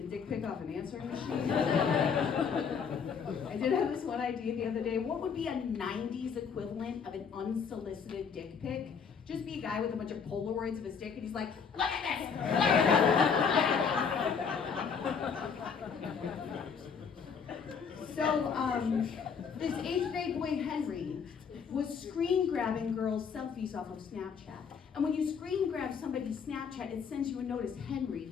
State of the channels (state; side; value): quieter; right; 6.4 dB